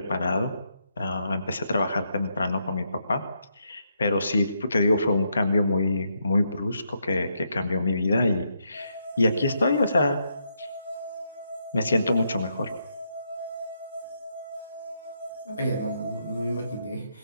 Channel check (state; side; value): inverted; both; correlation -0.78